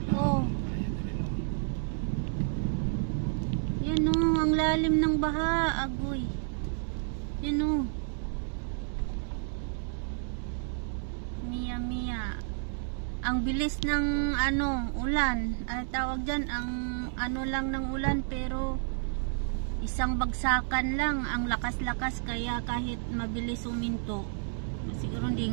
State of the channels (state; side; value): silent; left; digital silence